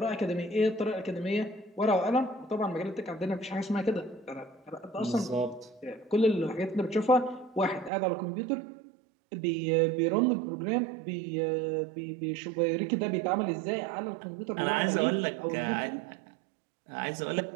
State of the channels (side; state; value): left; drops out; at 7.9 s